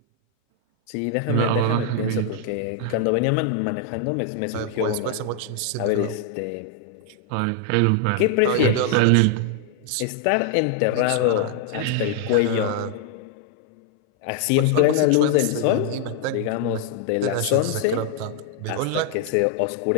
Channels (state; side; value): different; both; correlation 0.00